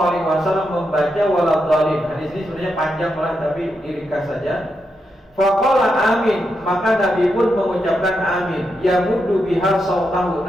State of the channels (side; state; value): both; normal; correlation 0.84